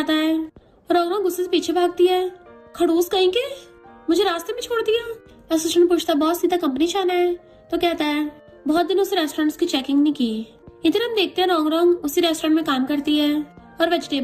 है और रौनक गुस्से से पीछे भागती है। खड़ूस कहीं के मुझे रास्ते में छोड़ दिया। असिस्टेंट पूछता बॉस सीधा कंपनी जाना है। तो कहता है बहुत दिनों से रेस्टोरेंट्स की चेकिंग नहीं की। इधर हम देखते हैं रॉन्ग उसी रेस्टोरेंट में काम करती है और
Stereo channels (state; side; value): identical; both; correlation 1.00